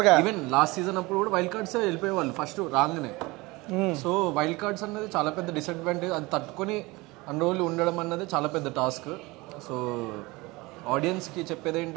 even last season అప్పుడు కూడా వైల్డ్ కార్డ్స్ వెళ్ళిపోయేవాళ్ళు ఫస్ట్ రాగానే. సో వైల్డ్ కార్డ్స్ అన్నది చాలా పెద్ద డిసడ్వాంటేజ్. అది తట్టుకొని అన్ని రోజులు ఉండడం అన్నది చాలా పెద్ద టాస్క్. సో ఆడియన్స్కి చెప్పేది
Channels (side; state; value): left; quieter; 22.7 dB